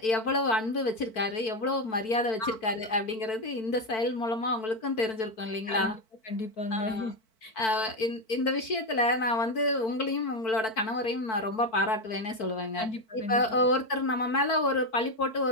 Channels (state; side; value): late; right; 4.5 ms